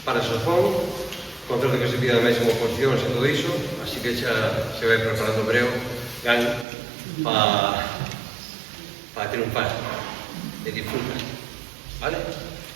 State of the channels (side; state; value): left; drops out; at 6.7 s